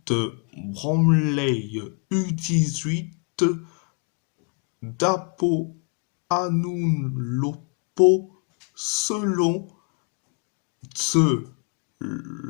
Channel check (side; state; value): right; quieter; 35.4 dB